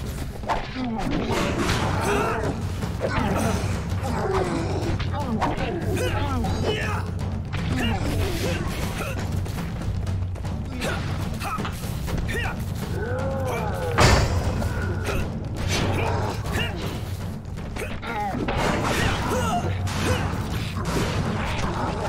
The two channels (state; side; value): identical; both; correlation 1.00